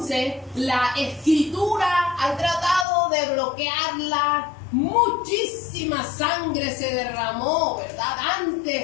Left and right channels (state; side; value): drops out; right; at 2.9 s